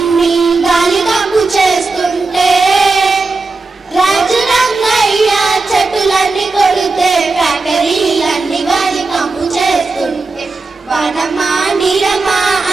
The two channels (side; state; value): left; quieter; 3.7 dB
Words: గాలి కంపు చేస్తుంటే, రాజు రంగయ్య చెట్టులన్నీ కొడితే ఫ్యాక్టరీలన్నీ గాలి కంపు చేస్తుంటే, వనమా నీరమా